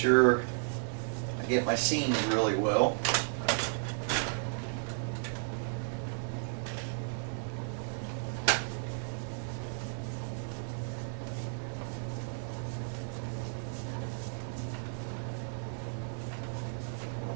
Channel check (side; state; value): left; silent; 55 dB below the other